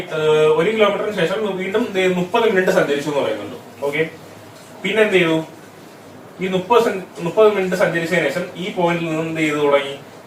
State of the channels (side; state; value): both; identical; correlation 1.00